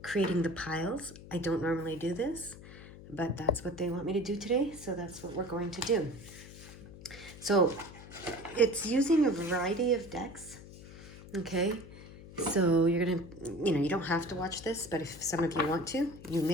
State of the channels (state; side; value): noise; left; hum, 16 dB below the sound